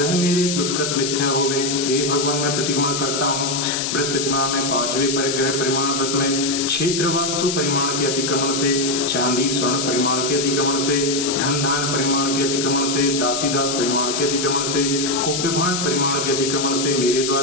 मेरे दुष्कृत मिथ्या होवे। हे भगवान, मैं प्रतिक्रमण करता हूँ व्रत प्रतिमा में 5वें परिग्रह परिमाण व्रत में क्षेत्र वास्तु परिमाण के अतिक्रमण से, चांदी स्वर्ण परिमाण के अतिक्रमण से, धन धान परिमाण के अतिक्रमण से, दासी दास परिमाण के अतिक्रमण से, कुप्यभांड परिमाण के अतिक्रमण से मेरे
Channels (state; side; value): noise; left; hiss, 2 dB below the sound